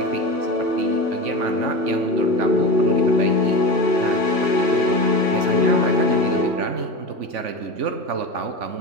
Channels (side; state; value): left; late; 3.5 ms